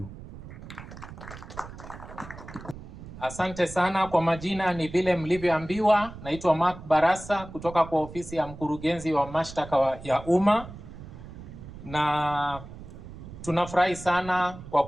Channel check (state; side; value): noise; right; rumble, 14 dB below the sound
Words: Asante sana. Kwa majina ni vile mlivyoambiwa, naitwa Mark Barasa kutoka kwa ofisi ya mkurugenzi wa mashtaka ya umma, na tunafurahi sana kwa